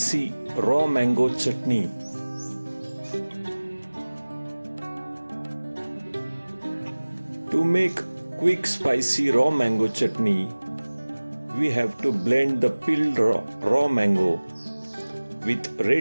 raw mango chutney. To make quick spicy raw mango chutney, we have to blend the peeled raw mango with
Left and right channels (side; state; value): both; inverted; correlation -1.00